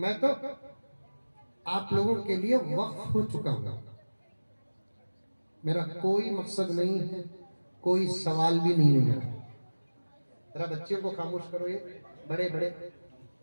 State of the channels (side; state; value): both; inverted; correlation -1.00